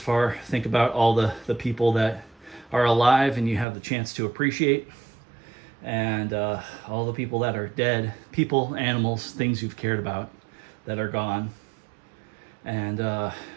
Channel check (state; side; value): drops out; left; at 3.7 s